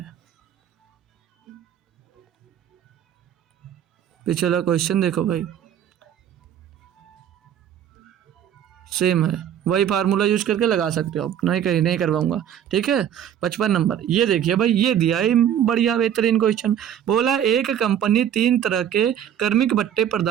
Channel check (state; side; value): quieter; left; 9.8 dB